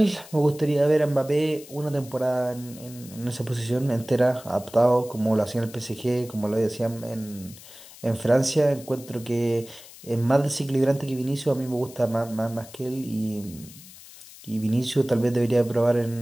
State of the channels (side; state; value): left; noise; hiss, 19 dB below the sound